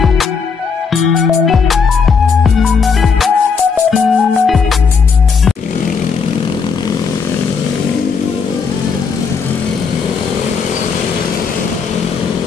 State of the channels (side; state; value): right; quieter; 5.5 dB